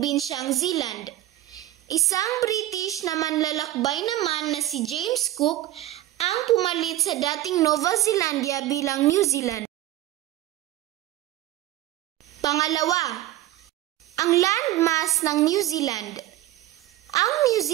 Zealand. Isang British na manlalakbay naman na si James Cook ang pumalit sa dating Nova Zealandia bilang New Zealand. Pangalawa, ang landmass ng New Zealand. Ang New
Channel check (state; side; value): quieter; left; 14.8 dB